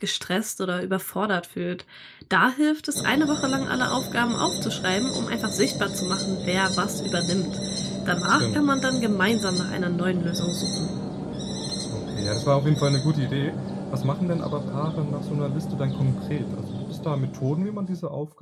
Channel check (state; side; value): identical; both; correlation 1.00